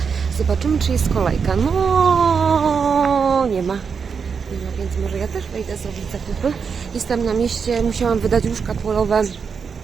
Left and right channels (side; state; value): left; quieter; 6.0 dB